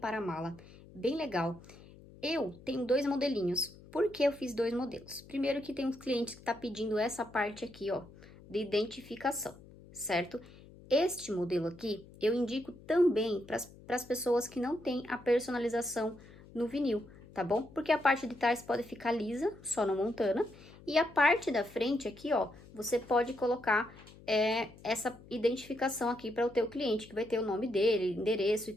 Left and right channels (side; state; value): left; noise; hum, 21 dB below the sound